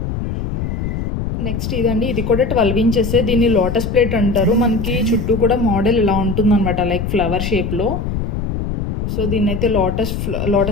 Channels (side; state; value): left; noise; rumble, 3 dB below the sound